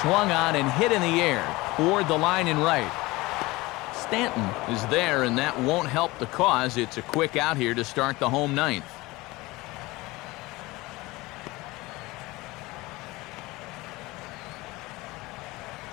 swung on and hit in the air toward the line and right. Stanton is there, and that won't help the cause. It's a quick out here to start the home 9th.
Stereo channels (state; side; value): quieter; right; 21.2 dB